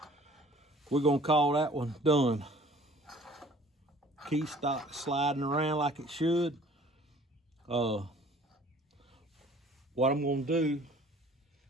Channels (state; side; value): normal; both; correlation 0.52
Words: we're gonna call that one done. Key stock sliding around like it should. What I'm gonna do